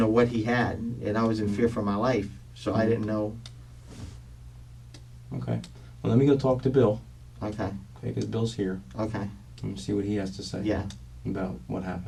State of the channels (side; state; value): both; identical; correlation 1.00